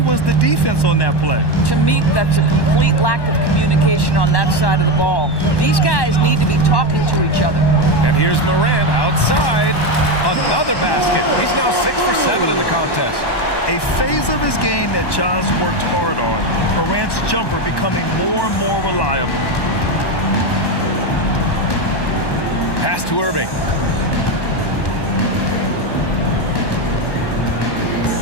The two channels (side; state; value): right; late; 1.1 ms